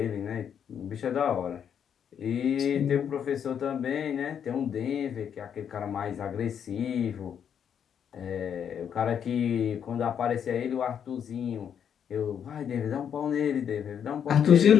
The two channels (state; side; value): quieter; right; 8.3 dB